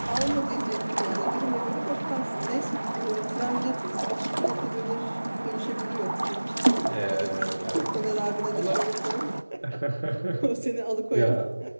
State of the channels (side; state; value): both; inverted; correlation -1.00